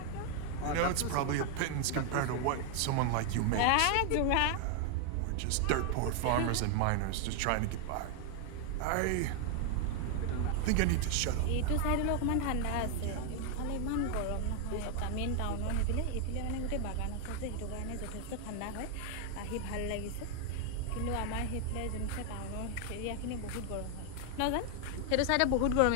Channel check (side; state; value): both; different; correlation 0.00